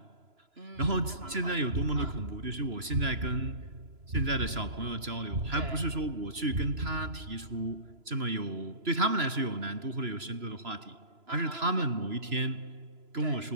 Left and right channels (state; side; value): late; left; 3.0 ms